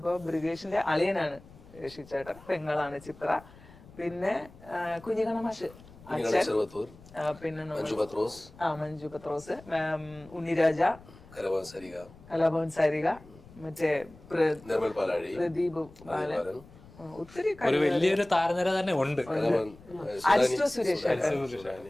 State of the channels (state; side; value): noise; left; rumble, 22 dB below the sound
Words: ബ്രിഗേഷിന്റെ അളിയനാണ് ശ്രീചേട്ടൻ, പെങ്ങളാണ് ചിത്ര, പിന്നെ കുഞ്ഞിക്കണമാഷ് അച്ഛൻ, പിന്നെ മഞ്ജു പത്രോസ്, ഉണ്ണിരാജ, കലാഭവൻ സാരിക, മറ്റേ പ്രദീപ് ബാലൻ, ഒത്തിരി വലിയൊരു താരനിര തന്നെ ഉണ്ട്. അരിസ്റ്റോ സുരേഷ്,